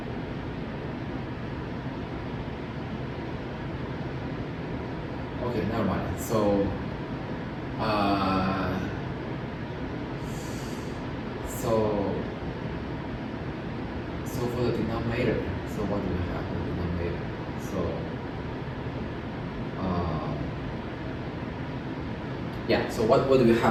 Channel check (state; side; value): identical; both; correlation 1.00